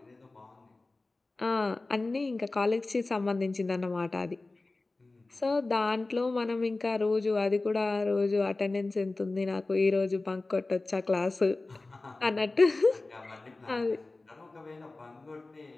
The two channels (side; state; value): right; quieter; 3.3 dB